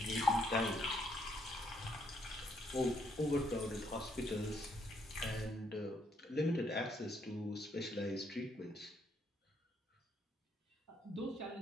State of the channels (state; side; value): normal; both; correlation 0.72